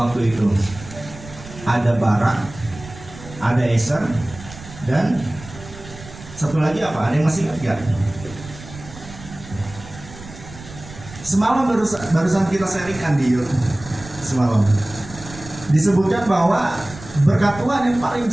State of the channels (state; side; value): noise; right; rumble, 16 dB below the sound